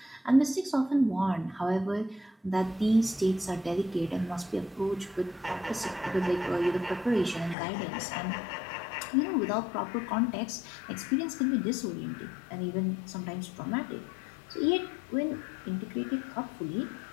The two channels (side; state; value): right; drops out; at 7.6 s